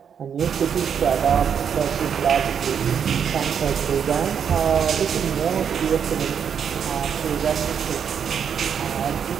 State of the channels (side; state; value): left; quieter; 7.6 dB